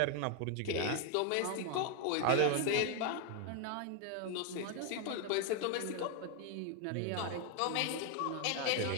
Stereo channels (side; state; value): both; different; correlation 0.01